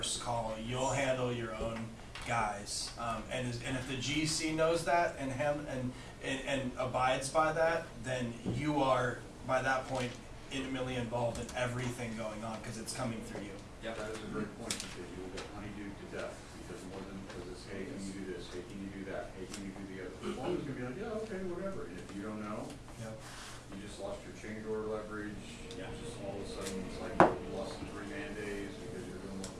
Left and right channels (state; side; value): identical; both; correlation 1.00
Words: call. You'll handle your own guys. And if the GC knows that and abides by that, then you are, by that point, intimately involved in everything going on because it's coming through you. Yep. That is a great point, because you will get honeydewed to death, because it's, hey, can you do this, hey, can you do that, hey, can you do the other? The foreman's gonna be like, yeah, okay, whatever, and if you don't know, Yep. you just lost your change order leverage, Yeah. just all of a sudden, it's like you lost 3 man days because you're